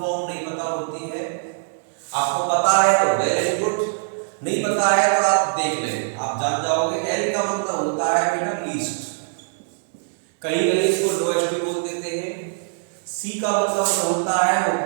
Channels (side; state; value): left; silent; 64 dB below the other